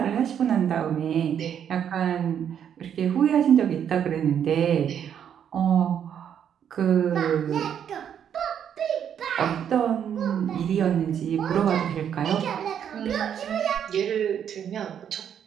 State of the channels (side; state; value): left; quieter; 8.8 dB